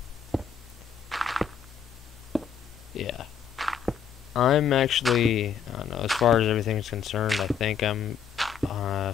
yeah. I'm actually, I don't know, as far as everything's concerned, I think I'm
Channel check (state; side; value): quieter; right; 7.2 dB